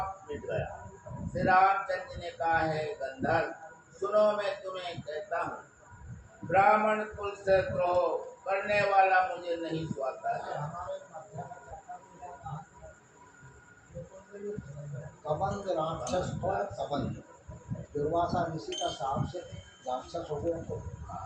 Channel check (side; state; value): both; identical; correlation 1.00